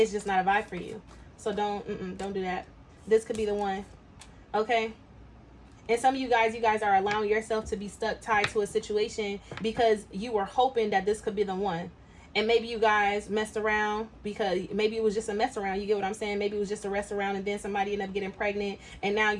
just not a vibe for you. So don't do that. This could be the one. Okay? And some of you guys are allowing yourself to be stuck, tied to a situation because you were hoping that this could be the one. And maybe you guys messed around because maybe it was just a mess around. You get what I'm saying? Maybe it was just a rest around, and then somebody ended up getting pregnant, and now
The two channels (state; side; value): identical; both; correlation 1.00